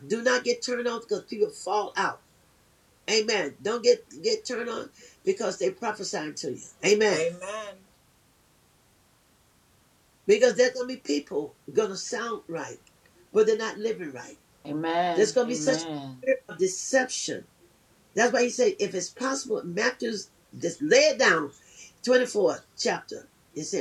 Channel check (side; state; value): both; identical; correlation 1.00